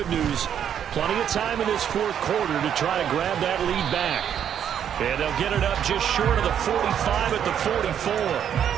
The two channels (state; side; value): quieter; left; 9.1 dB